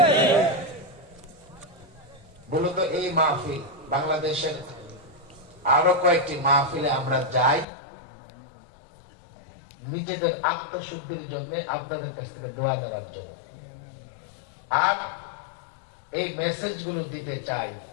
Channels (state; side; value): drops out; right; at 7.7 s